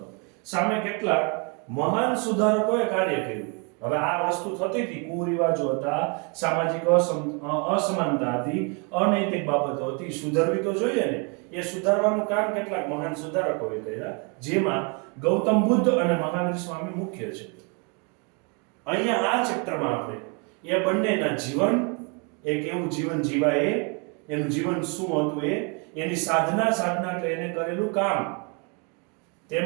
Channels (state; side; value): quieter; left; 34.2 dB